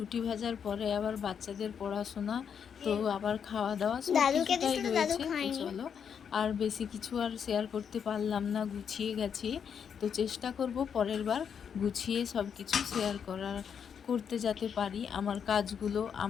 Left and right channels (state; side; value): quieter; right; 7.4 dB